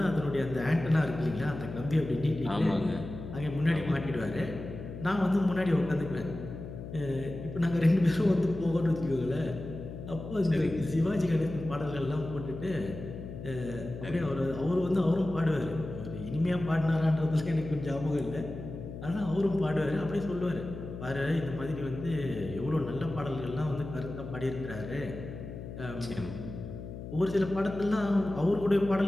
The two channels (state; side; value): noise; left; hum, 10 dB below the sound